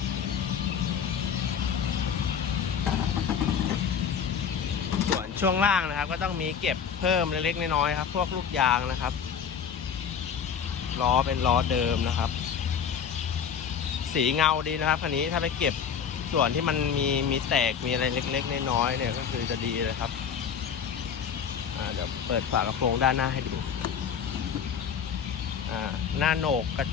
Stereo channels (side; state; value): right; quieter; 7.4 dB